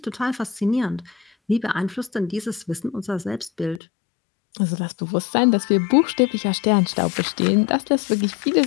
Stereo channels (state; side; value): drops out; right; at 3.8 s